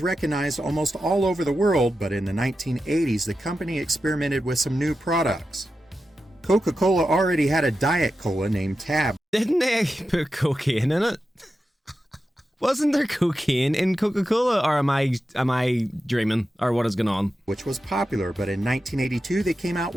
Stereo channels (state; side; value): normal; both; correlation 0.91